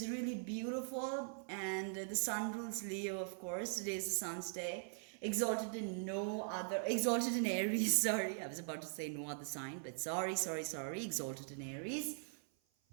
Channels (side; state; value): left; silent; 50 dB below the other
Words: really beautiful. And the sun rules Leo, of course. Today is the sun's day. Exalted in Aries. Sorry, I was about to say no other sign, but sorry. Exalted in Aries.